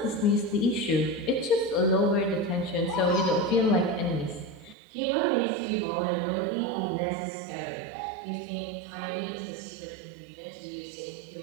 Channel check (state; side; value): drops out; left; at 4.8 s